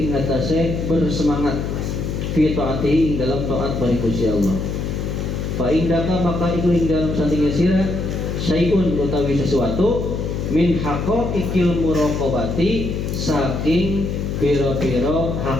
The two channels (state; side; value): noise; left; hum, 2 dB below the sound